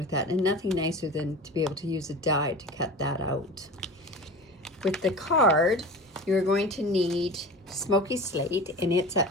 that, and nothing nicer than to be able to use a die to cut that out. With the card, you're going to need Smokey Slate, and it's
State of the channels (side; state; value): both; normal; correlation 0.33